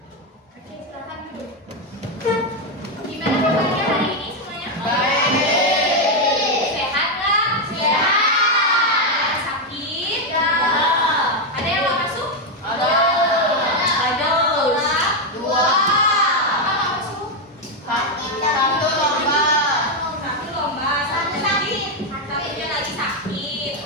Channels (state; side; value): normal; both; correlation 0.04